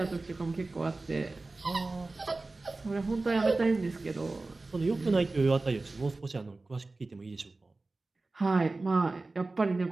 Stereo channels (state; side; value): quieter; left; 3.3 dB